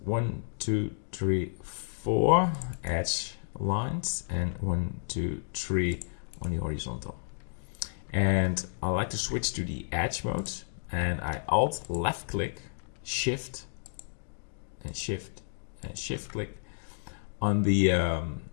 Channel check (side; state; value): right; silent; digital silence